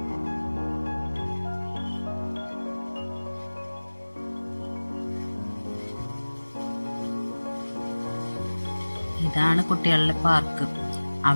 ഇതാണ് കുട്ടികളുടെ പാർക്ക്.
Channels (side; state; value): both; inverted; correlation -1.00